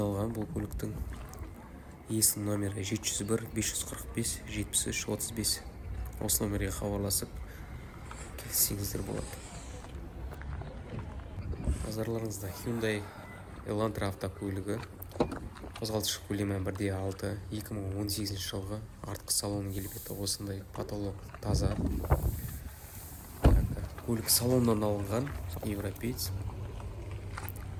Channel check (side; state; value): both; identical; correlation 1.00